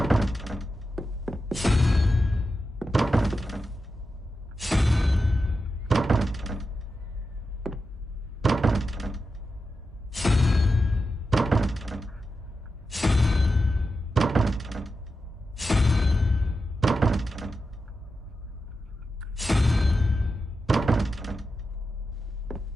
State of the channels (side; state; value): both; normal; correlation 0.89